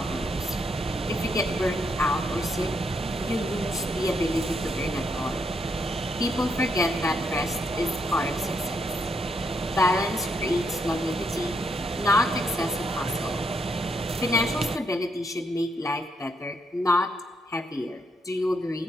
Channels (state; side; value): normal; both; correlation 0.77